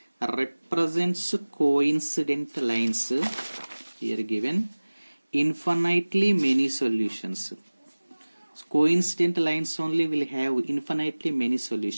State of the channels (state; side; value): inverted; both; correlation -1.00